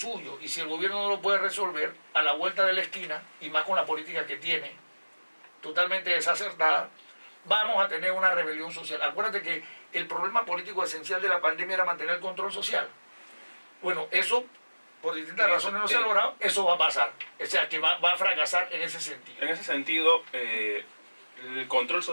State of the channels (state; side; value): inverted; both; correlation -1.00